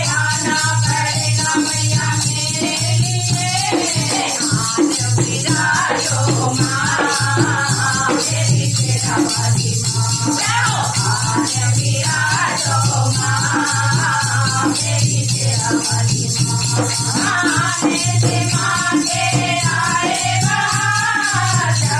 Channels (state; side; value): identical; both; correlation 1.00